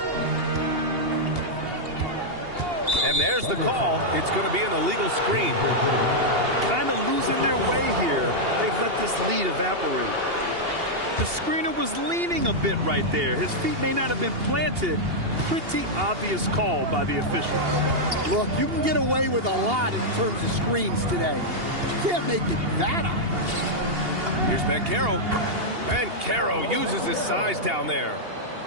And there's the call. It's going to be an illegal screen. Kind of losing their way here. They've let this lead evaporate. The screener was leaning a bit right there. His feet may not have been planted. Pretty obvious call by the officials. Look, you can get away with a lot in terms of screens today. You can't make it that obvious. Here's Banchero. Banchero uses his size down there.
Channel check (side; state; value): left; late; 2.8 ms